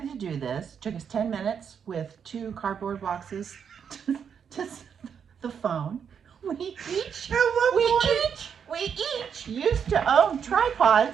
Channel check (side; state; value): left; quieter; 7.3 dB